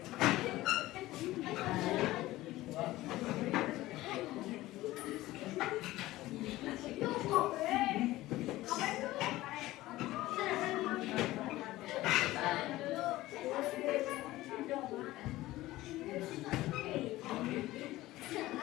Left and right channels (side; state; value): right; quieter; 17.1 dB